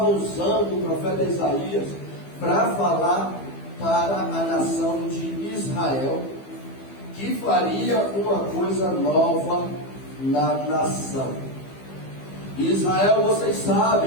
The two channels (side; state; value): right; late; 15 ms